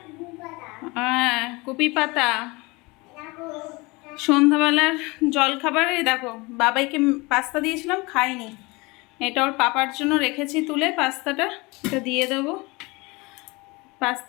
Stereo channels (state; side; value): quieter; right; 24.8 dB